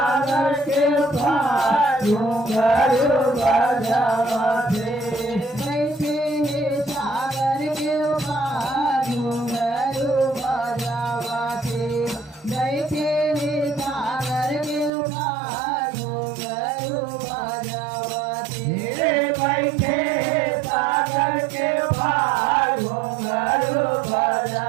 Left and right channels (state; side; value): drops out; left; at 14.9 s